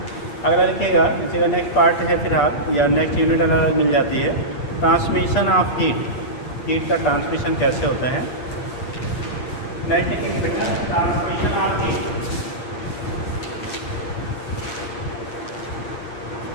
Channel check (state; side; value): late; right; 8.3 ms